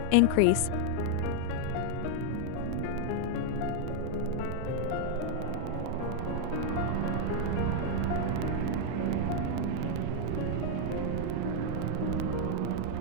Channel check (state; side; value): different; both; correlation 0.00